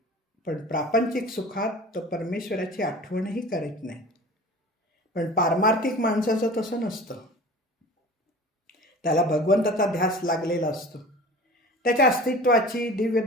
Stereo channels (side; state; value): both; normal; correlation 0.40